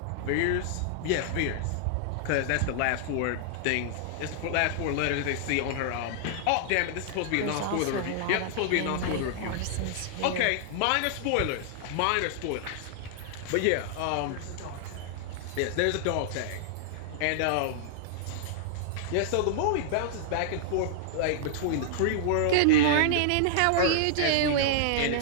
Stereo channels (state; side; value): different; both; correlation -0.01